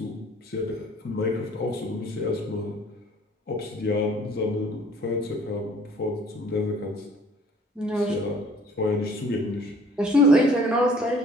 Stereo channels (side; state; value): both; normal; correlation 0.54